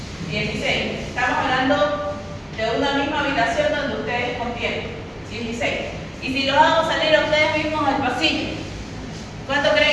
16. Estamos hablando de una misma habitación donde ustedes contienen. 16. Y si los hago salir a ustedes mismos al pasillo, ¿cuánto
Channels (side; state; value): both; identical; correlation 1.00